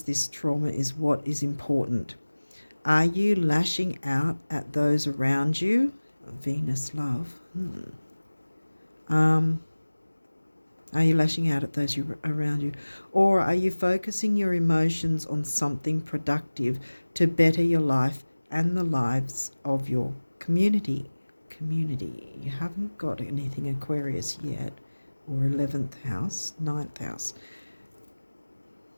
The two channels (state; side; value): inverted; both; correlation -1.00